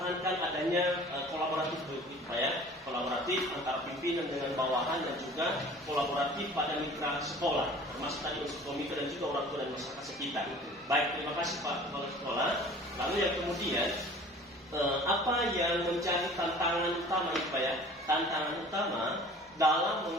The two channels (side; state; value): both; normal; correlation 0.46